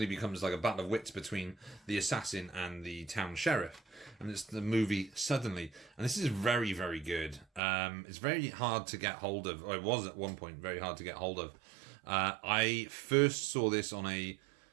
becomes like a battle of wits between the assassin and the town sheriff. And it's the movie Suddenly. And this is very, very good. It's very hard to get hold of, or it was at one point very hard to get hold of. I first saw this on a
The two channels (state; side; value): drops out; left; at 7.6 s